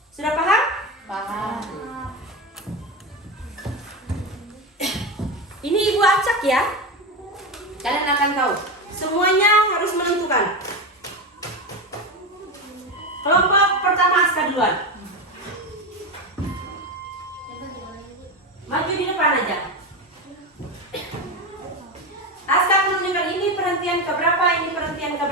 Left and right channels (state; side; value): normal; both; correlation 0.18